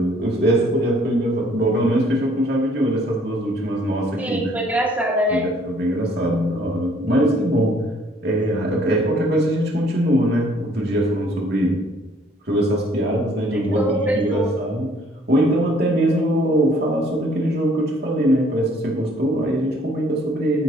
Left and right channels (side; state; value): both; normal; correlation 0.61